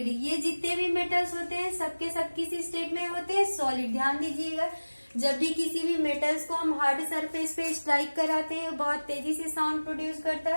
ये जितने भी मेटल्स होते हैं सबके सब किसी स्टेट में होते हैं, सॉलिड। ध्यान दीजिएगा, जब भी किसी भी मेटल्स को हम हार्ड सरफेस पे स्ट्राइक कराते हैं बहुत तेजी से साउंड प्रोड्यूस करता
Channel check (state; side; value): inverted; both; correlation -1.00